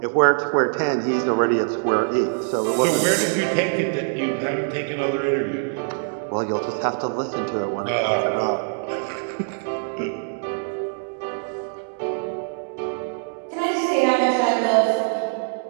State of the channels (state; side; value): silent; left; digital silence